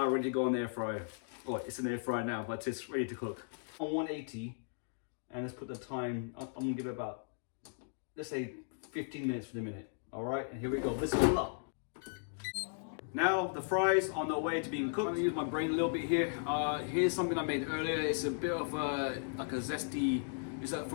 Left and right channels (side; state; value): right; silent; digital silence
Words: ready to go in the air fryer. Oh, it's in the air fryer now, but it's ready to cook. On 180. And let's put the time, I'm gonna give it about, let's say 15 minutes for the minute. All right, and here we go, bismillah. Now the fries on the way to being cooked. I'm gonna use my brain a little bit here. Here's something I made earlier. It's a bit of like a zesty, it's